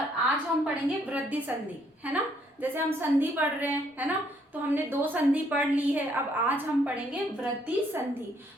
हम पढ़ेंगे वृद्धि संधि, है ना। जैसे हम संधि पढ़ रहे हैं, है ना, तो हमने दो संधि पढ़ ली है। अब आज हम पढ़ेंगे वृद्धि संधि।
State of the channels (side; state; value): both; normal; correlation 0.69